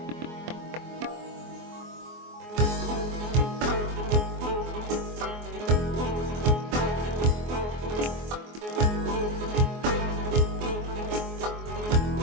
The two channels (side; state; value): left; late; 24 ms